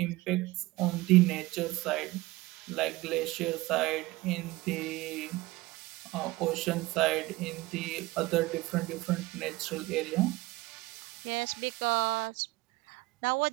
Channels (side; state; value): left; quieter; 20.2 dB